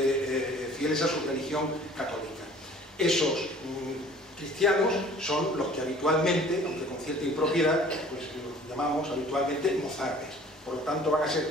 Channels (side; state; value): both; normal; correlation 0.50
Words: fieles a su religión católica. Esos cristianos son los que habitualmente, aunque con cierta impropiedad, pues los llamamos habitualmente mozárabes. Por lo tanto van a ser